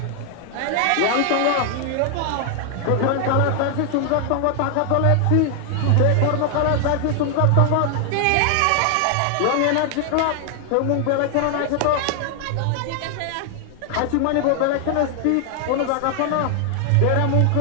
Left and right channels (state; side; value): different; both; correlation 0.00